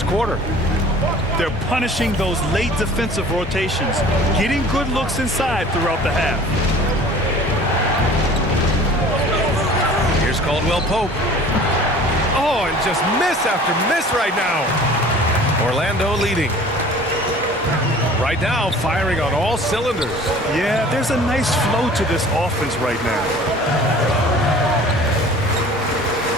quarter. They're punishing those late defensive rotations, getting good looks inside throughout the half. Here's Caldwell Pope. Oh, and just miss after miss right now. Orlando leading. Right now, firing on all cylinders. Yeah, there's a nice flow to this offense right now.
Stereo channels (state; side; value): normal; both; correlation 0.46